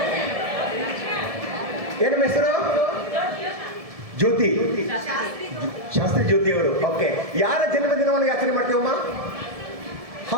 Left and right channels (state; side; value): late; left; 1.7 ms